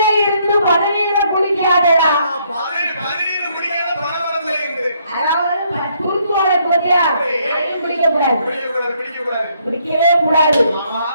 இருந்து பதவியில குளிக்காதடா. அதாவது குறுக்குவாழ குறையா குடிக்க கூடாது, குடிக்கவே கூடாது.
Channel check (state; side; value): inverted; both; correlation -0.70